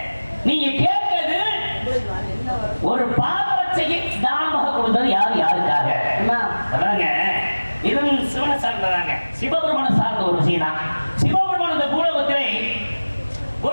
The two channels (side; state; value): both; inverted; correlation -1.00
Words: நீங்க கேட்கிறது ஒரு பாதரட்சையை தானமாக கொடுத்தது யாருக்காக? அதாங்க இதுவும் சிவனை சார்ந்ததாங்க, சிவபெருமான சார்ந்த ஒரு விஷயம் தான். சிவபெருமான இந்த பூலோகத்திலே